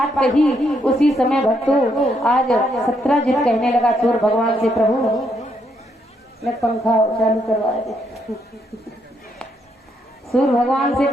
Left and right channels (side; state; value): both; normal; correlation 0.75